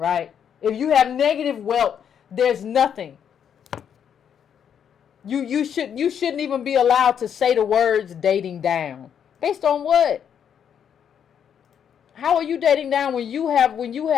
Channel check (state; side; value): quieter; right; 8.3 dB